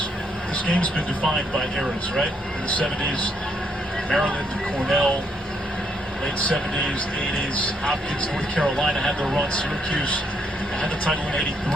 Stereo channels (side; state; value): both; normal; correlation 0.74